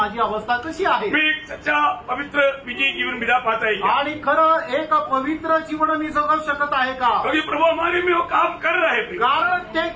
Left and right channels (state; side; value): identical; both; correlation 1.00